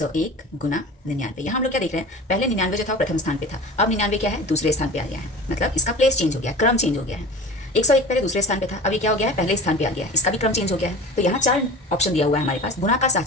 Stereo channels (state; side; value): normal; both; correlation 0.36